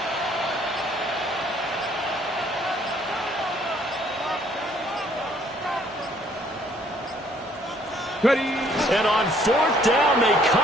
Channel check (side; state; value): both; normal; correlation 0.63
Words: Ready. And on 4th down, they